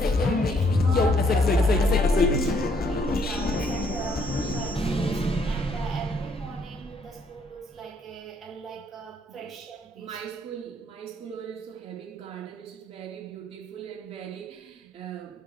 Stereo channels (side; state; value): both; normal; correlation 0.68